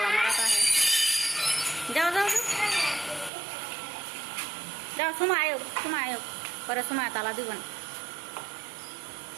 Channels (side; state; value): left; drops out; at 3.3 s